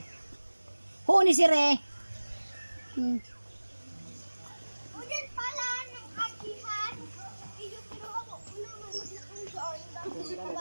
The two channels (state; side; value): inverted; both; correlation -1.00